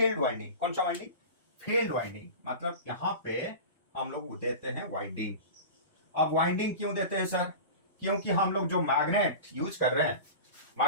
वाइंडिंग। कौन सा वाइंडिंग? Field winding. मतलब यहां पे हम लोग देते हैं वाइंडिंग। अब वाइंडिंग क्यों देते हैं सर? क्योंकि हम लोग जो मैग्नेट यूज कर रहे हैं,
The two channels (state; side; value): inverted; both; correlation -0.31